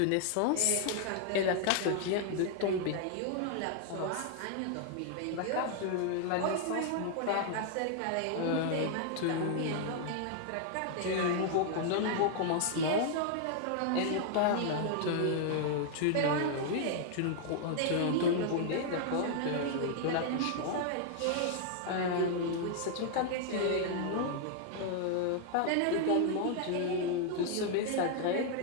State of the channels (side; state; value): both; different; correlation 0.00